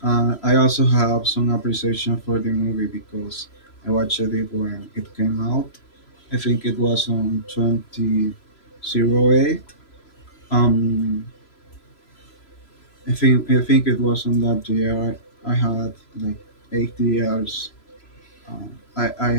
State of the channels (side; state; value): right; late; 3.0 ms